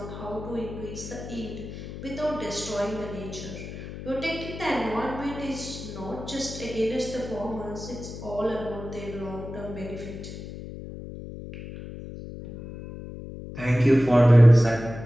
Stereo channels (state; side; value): noise; left; hum, 11 dB below the sound